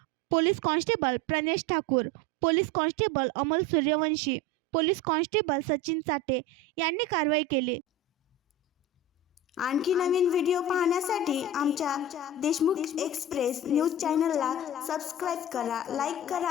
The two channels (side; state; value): both; normal; correlation 0.30